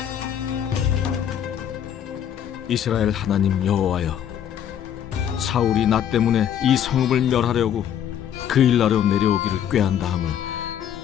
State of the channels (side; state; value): right; quieter; 9.6 dB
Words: 이스라엘 하나님 여호와여, 사울이 나 때문에 이 성읍을 멸하려고 그일라로 내려오기를 꾀한다 함을